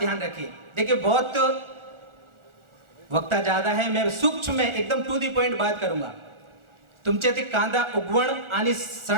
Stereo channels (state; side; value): late; left; 1.4 ms